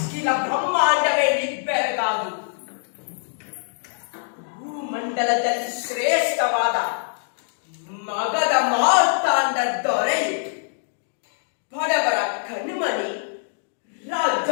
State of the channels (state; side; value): silent; right; digital silence